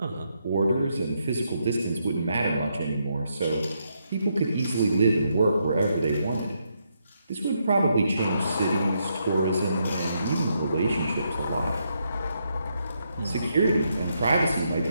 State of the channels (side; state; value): both; inverted; correlation -0.79